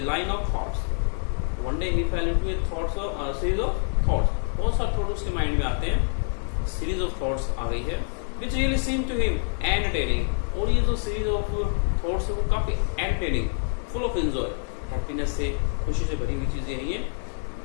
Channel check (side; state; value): right; silent; 57 dB below the other